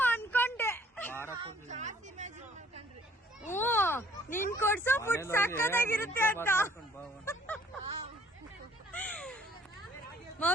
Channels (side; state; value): both; normal; correlation 0.58